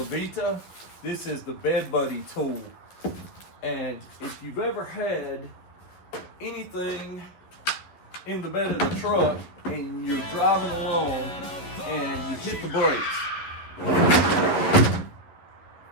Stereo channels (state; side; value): late; right; 11 ms